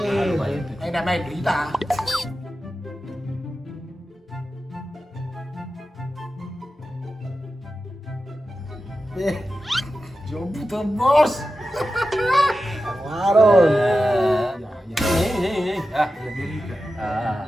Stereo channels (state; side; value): normal; both; correlation 0.92